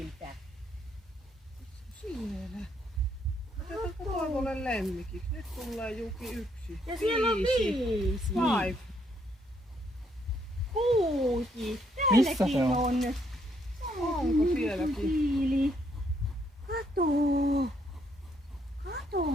Siellä. Otetaan Toivolle lemmikiksi. Nyt tulee Juki 1. Ja siellä on 5. 5. 6. Missä Täälläkin se on? Onko sielläkin? Siili. Kato.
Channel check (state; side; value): normal; both; correlation 0.72